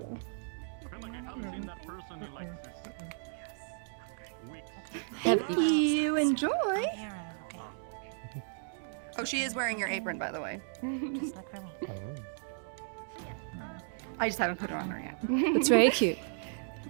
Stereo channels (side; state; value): left; silent; digital silence